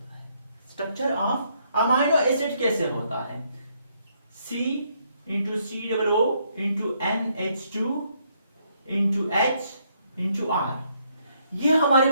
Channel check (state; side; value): inverted; both; correlation -0.72